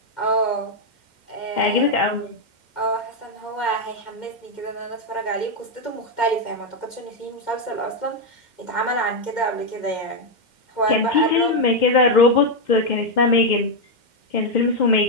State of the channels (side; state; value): right; late; 2.1 ms